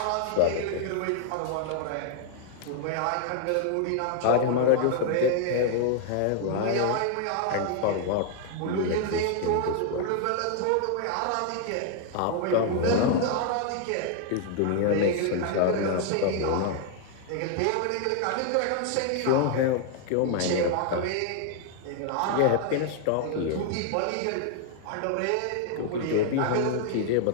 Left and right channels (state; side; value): different; both; correlation 0.00